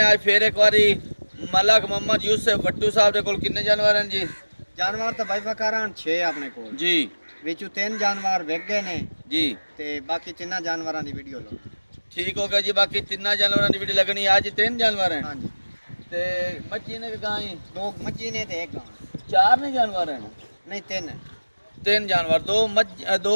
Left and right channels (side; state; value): both; inverted; correlation -1.00